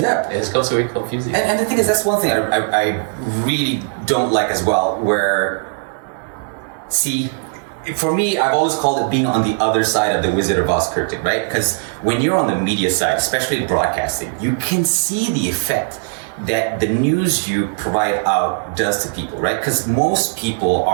it becomes very confusing. And the thing is, that's one thing I really don't like as well. For me, I've always called it being on the other side of the Wizard of Oz curtain, right? Because when you're on the media side, especially broadcasting, you can see the effect that the news you provide out does to people, right? Because most people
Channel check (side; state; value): left; silent; digital silence